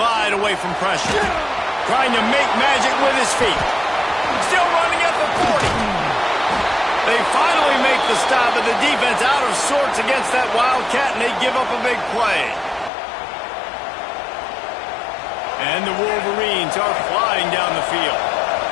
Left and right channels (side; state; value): right; drops out; at 12.9 s